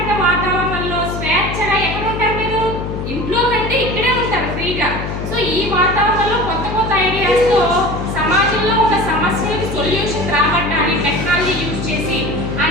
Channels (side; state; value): left; noise; hum, 5 dB below the sound